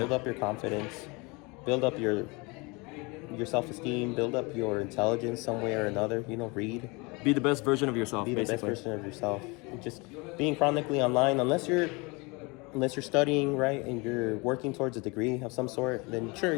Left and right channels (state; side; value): quieter; right; 27.2 dB